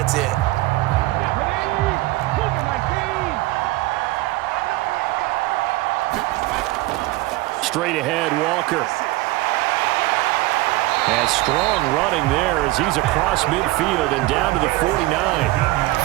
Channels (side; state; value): left; quieter; 19.5 dB